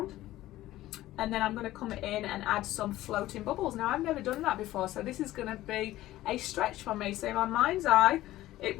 and then I'm going to come in and add some floating bubbles. Now I've never done that before, so this is going to be a stretch for me. So in my mind's eye, it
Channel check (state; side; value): quieter; right; 15.4 dB